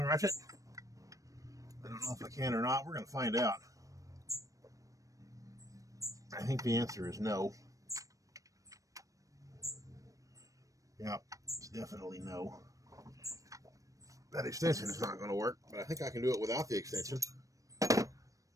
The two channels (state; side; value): late; left; 0.16 ms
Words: ratchet. I don't know if I can or not. We're going to find out. I think the answer is no. Yeah, it's definitely no. That extension is not going to work, but I think I can do it without the extension.